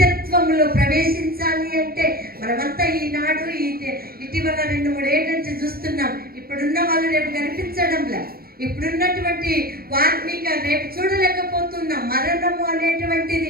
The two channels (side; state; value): left; late; 0.44 ms